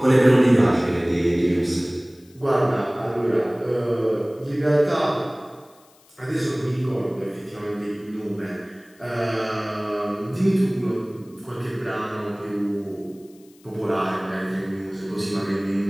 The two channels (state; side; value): noise; left; hiss, 29 dB below the sound